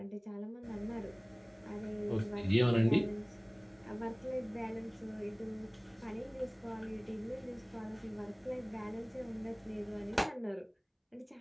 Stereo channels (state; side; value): identical; both; correlation 1.00